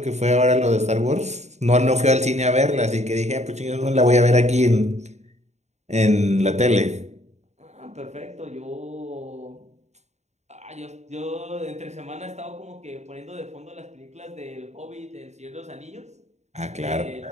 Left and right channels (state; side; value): late; left; 0.33 ms